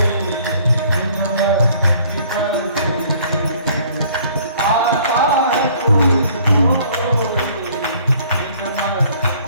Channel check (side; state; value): both; inverted; correlation -0.57